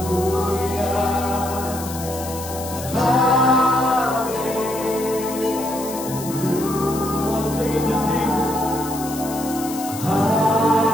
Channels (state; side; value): noise; left; hiss, 11 dB below the sound